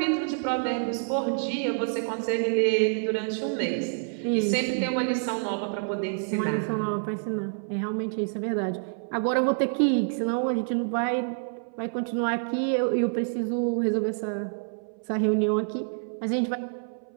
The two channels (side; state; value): left; silent; 60 dB below the other